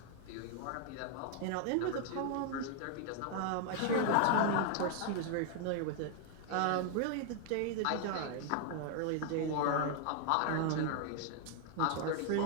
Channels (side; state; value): both; different; correlation 0.00